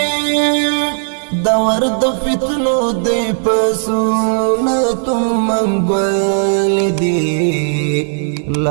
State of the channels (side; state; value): left; silent; 61 dB below the other